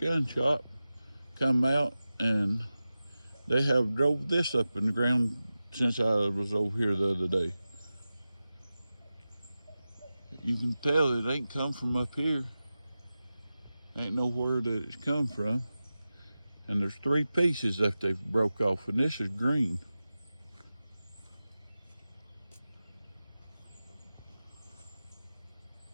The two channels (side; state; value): both; inverted; correlation -0.94